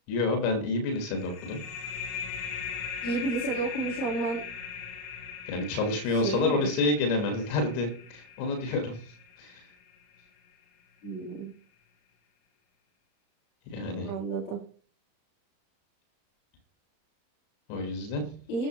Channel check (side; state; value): right; late; 33 ms